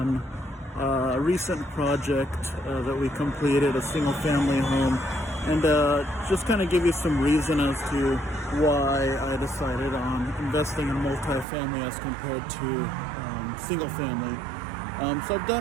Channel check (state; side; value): drops out; left; at 11.5 s